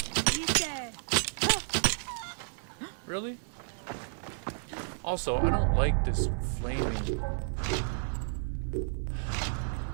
Really? Also, I don't like this flaming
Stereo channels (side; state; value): left; silent; digital silence